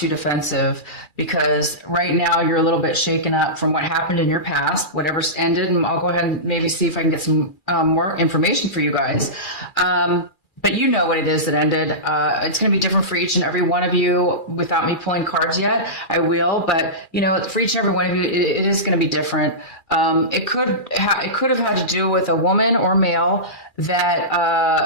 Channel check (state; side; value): late; right; 2.4 ms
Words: defensive because right now you're a little bit shaken up from what happened in your past, whatever's ended. And I'll go ahead and maybe see if I can get some more information for you guys. But you know what it is that ended. It's going to be different for each and every one of you without me pulling cards yet. I will, but for each and every one of you, it is going to be different. It could have had to do with a woman or male